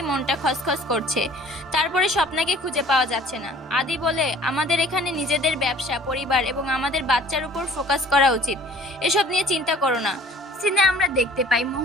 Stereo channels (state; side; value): normal; both; correlation 0.51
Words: মনটা খসখস করছে, তারপরে স্বপ্নাকে খুঁজে পাওয়া যাচ্ছে না। আদি বলে আমাদের এখানে নিজেদের ব্যবসা, পরিবার এবং আমাদের বাচ্চার উপর ফোকাস করা উচিত, এসব নিয়ে চিন্তা করো না। সিনে আমরা দেখতে পাই